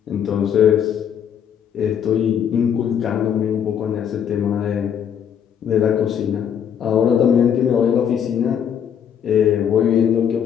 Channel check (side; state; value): right; quieter; 8.5 dB